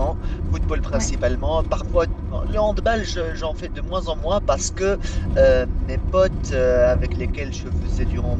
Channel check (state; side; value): identical; both; correlation 1.00